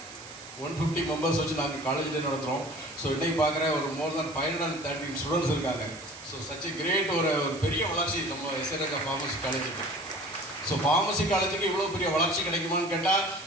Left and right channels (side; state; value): right; noise; hiss, 16 dB below the sound